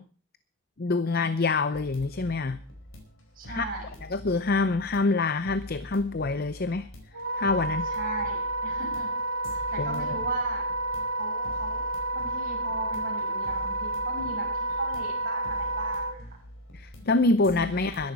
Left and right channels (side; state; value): both; normal; correlation -0.01